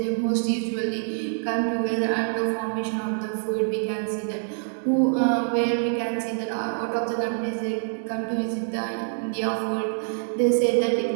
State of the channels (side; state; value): left; silent; digital silence